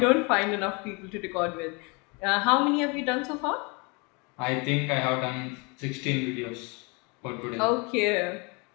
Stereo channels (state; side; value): quieter; right; 30.3 dB